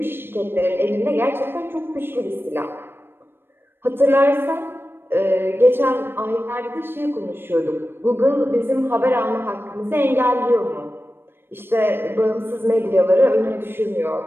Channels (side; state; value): left; late; 0.10 ms